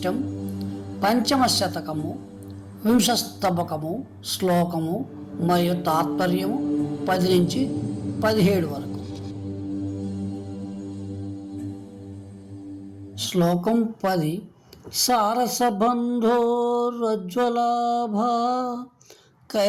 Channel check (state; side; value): identical; both; correlation 1.00